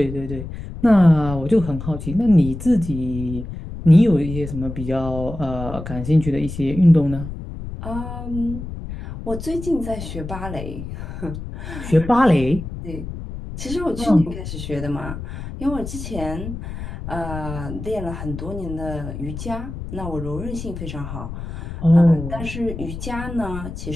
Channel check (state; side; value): noise; left; rumble, 9 dB below the sound